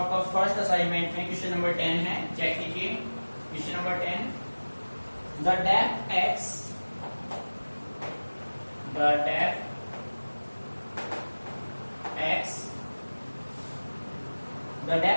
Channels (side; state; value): both; inverted; correlation -1.00